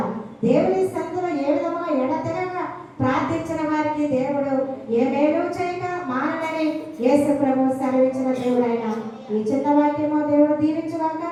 దేవుని సందులో ఏ విధంగా ఎడతెగక ప్రార్థించిన వారికి దేవుడు ఏ మేలు చేయక మానని యేసు ప్రభు సెలవించిన దేవుడు ఆయన. ఈ చిన్న వాక్యమో దేవుడు దీవించుగాక.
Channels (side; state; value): both; identical; correlation 1.00